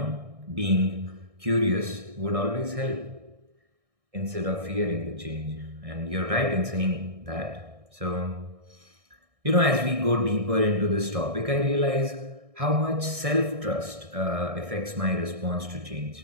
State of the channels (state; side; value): late; left; 1.6 ms